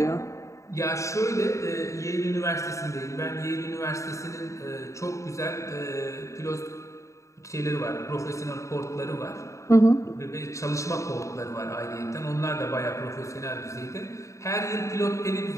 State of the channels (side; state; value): right; late; 0.15 ms